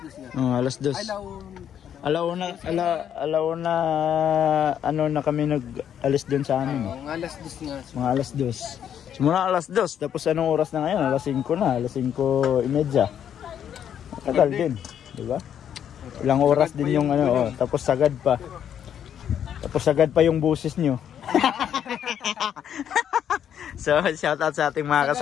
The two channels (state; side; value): quieter; right; 9.3 dB